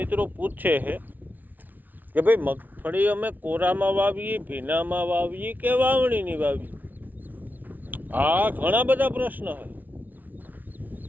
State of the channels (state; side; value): late; left; 0.081 ms